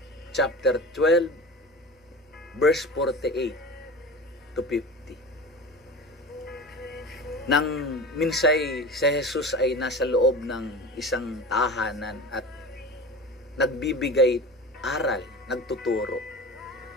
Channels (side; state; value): both; normal; correlation 0.32